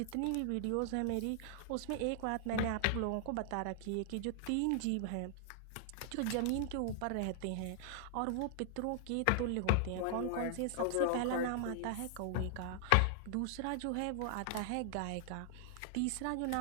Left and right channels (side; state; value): both; different; correlation -0.01